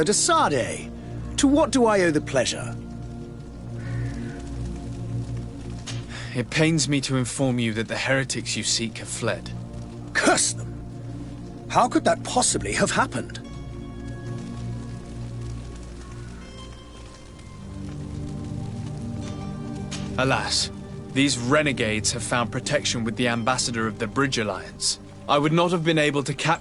de Sardet, to what do I owe the pleasure? It pains me to inform you that the heretics you seek have fled. Curse them! How could that possibly have happened? Alas, these renegades have found protection with the ambassador of the Bridge Alliance. I would not have been able to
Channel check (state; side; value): identical; both; correlation 1.00